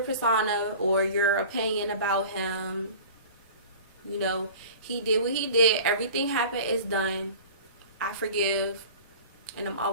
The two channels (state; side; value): inverted; both; correlation -0.41